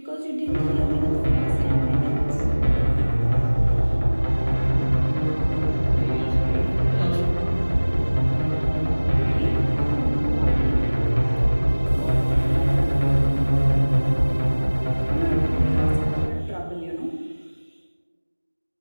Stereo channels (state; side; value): inverted; both; correlation -1.00